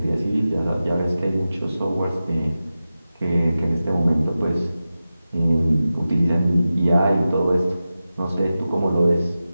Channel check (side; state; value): both; inverted; correlation -0.94